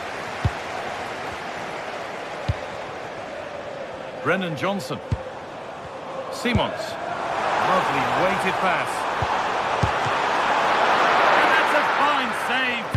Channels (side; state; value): both; identical; correlation 1.00